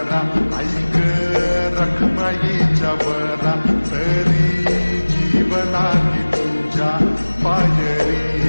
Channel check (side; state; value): both; inverted; correlation -1.00